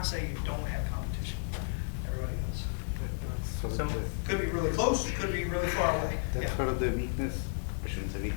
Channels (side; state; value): right; silent; digital silence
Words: say you don't have competition. Everybody does. So could be really close, could be really far away. That's one of the weakness. I shouldn't say